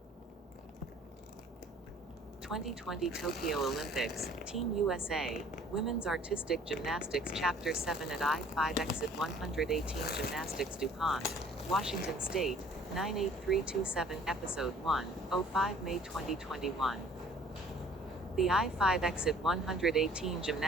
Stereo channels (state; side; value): normal; both; correlation 0.54